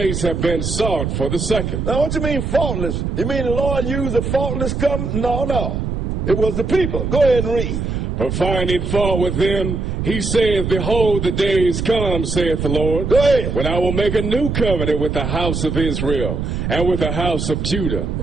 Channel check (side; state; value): right; noise; rumble, 2 dB below the sound